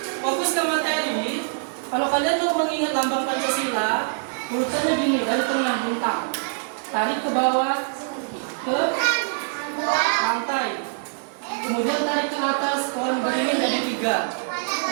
fokus ke materi. Kalau kalian mau mengingat lambang Pancasila, urutannya gini, dari tengah bintang, tarik ke bawah ke lantai, kemudian tarik ke atas, pohon beringin jadi 3,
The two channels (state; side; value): silent; left; digital silence